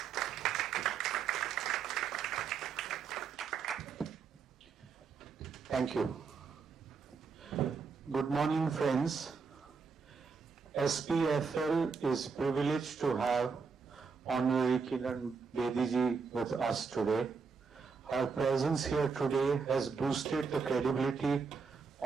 Thank you. Good morning, friends. SPFL is privileged to have Honorary Kiran Bedi ji with us today. Her presence here today has boosted the credibility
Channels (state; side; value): quieter; left; 5.4 dB